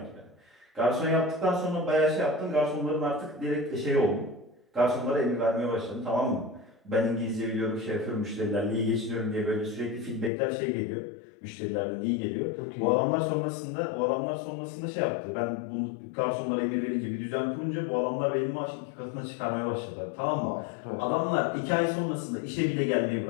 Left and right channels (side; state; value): right; drops out; at 10.3 s